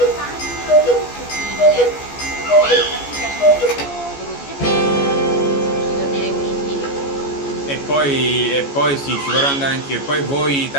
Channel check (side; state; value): right; late; 14 ms